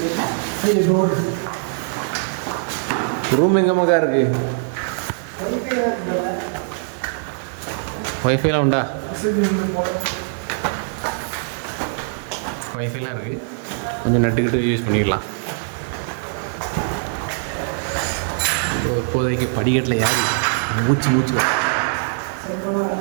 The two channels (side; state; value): left; silent; digital silence